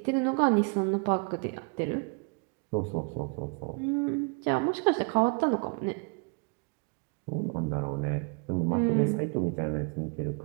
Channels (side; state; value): left; quieter; 34.9 dB